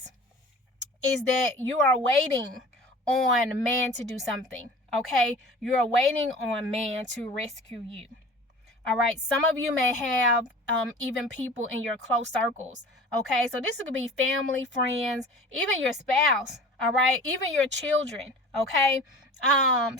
that you are waiting on man to do something. Okay, you're waiting on man to rescue you. All right, some of you may have even people in your close circles. Okay, so this could be family, friends, even your spouse. All right, even your children. Okay,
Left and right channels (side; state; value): both; normal; correlation 0.41